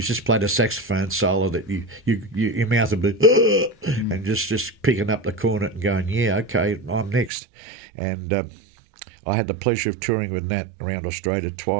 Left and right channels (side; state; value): left; drops out; at 7.3 s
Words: played a saxophone solo that your mouth would be and just picking up the cornet and going, yeah, okay, I'm next. And I had the pleasure of touring with Nat around Australia